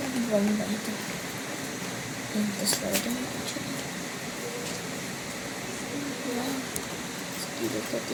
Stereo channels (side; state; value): both; identical; correlation 1.00